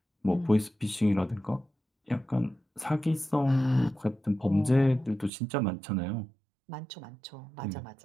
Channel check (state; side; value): drops out; left; at 5.3 s